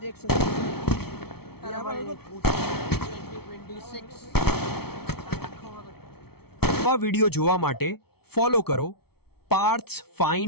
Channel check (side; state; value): right; late; 0.95 ms